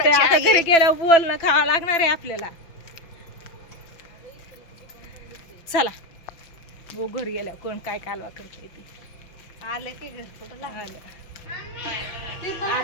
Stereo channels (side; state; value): right; late; 5.9 ms